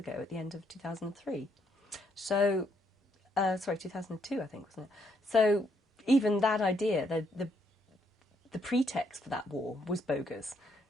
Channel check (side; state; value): both; normal; correlation 0.73